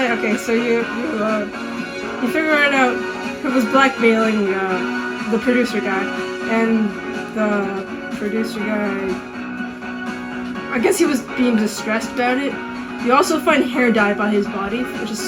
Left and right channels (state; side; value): identical; both; correlation 1.00